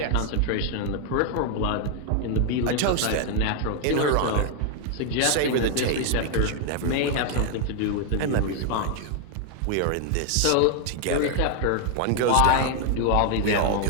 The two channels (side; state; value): both; different; correlation 0.00